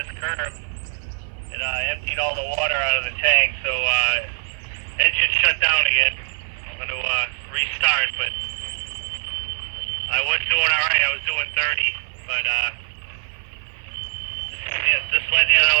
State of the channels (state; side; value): silent; left; 57 dB below the other